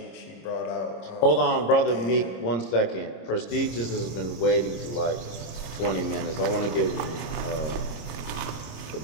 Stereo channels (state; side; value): late; right; 26 ms